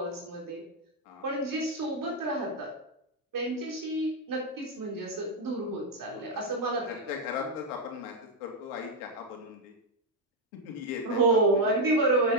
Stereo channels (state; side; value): normal; both; correlation 0.01